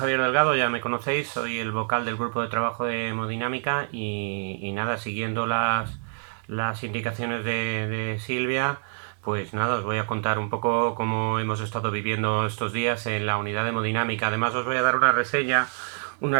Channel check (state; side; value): silent; left; digital silence